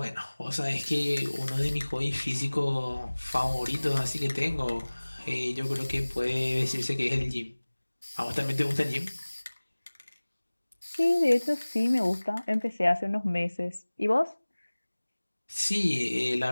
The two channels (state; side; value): inverted; both; correlation -1.00